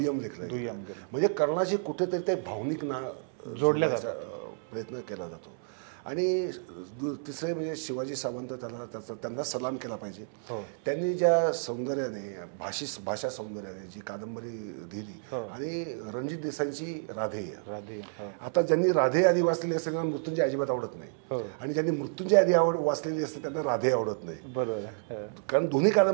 लेखलं गेलं. म्हणजे कर्णाची कुठेतरी ते भावनिक जोडण्याचा प्रयत्न केला जातो. आणि तिसरे म्हणजे शिवाजी सावंत त्यांना सलाम केला पाहिजे. त्यांनी ज्या सौंदर्याने भाषा सौंदर्याने जी कादंबरी दिली आणि रणजित देसाईंची राधेय. आता ज्यांनी राधे आधी वाचलेली असते त्यांना मृत्युंजय अजिबात आवडत नाही, आणि ज्यांनी मृत्युंजय आधी वाचलेली असते त्यांना राधे आवडत नाही. कारण दोन्ही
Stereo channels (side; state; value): left; silent; 57 dB below the other